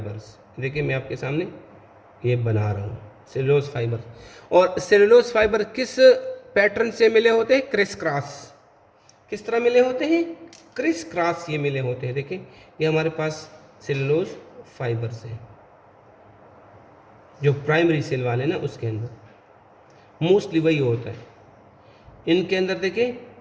देखिए मैं आपके सामने ये बना रहा हूँ, सेलुलोज फाइबर। और सेलुलोज फाइबर किस पैटर्न से मिले होते हैं? Criss cross. किस तरह मिले होते हैं? क्रिस क्रॉस ये मिले होते हैं। देखिए, ये हमारे पास सेलुलोज फाइबर्स हैं, जो प्राइमरी सेल वाले ना उसके अंदर मोस्टली वही होता है। इनके अंदर देखिए,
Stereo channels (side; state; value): both; identical; correlation 1.00